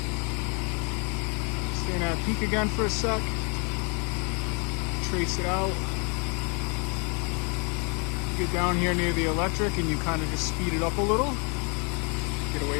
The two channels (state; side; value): quieter; right; 34.5 dB